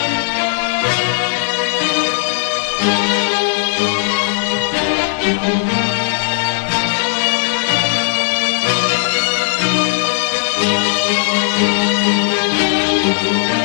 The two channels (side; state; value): right; silent; 69 dB below the other